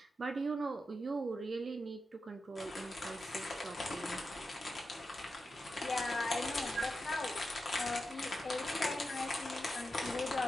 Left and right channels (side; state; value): both; normal; correlation 0.89